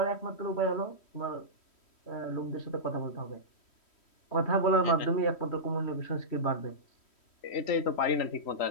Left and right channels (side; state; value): right; late; 3.1 ms